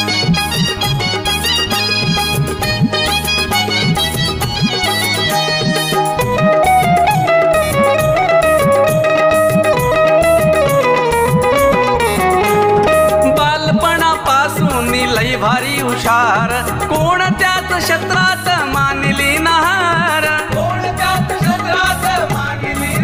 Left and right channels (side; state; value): both; identical; correlation 1.00